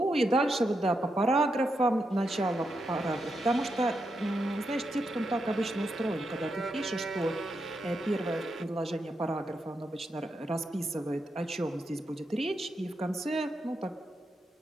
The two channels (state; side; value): normal; both; correlation 0.84